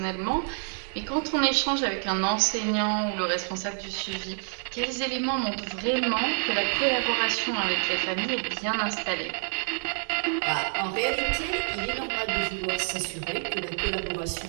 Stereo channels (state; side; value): silent; left; 56 dB below the other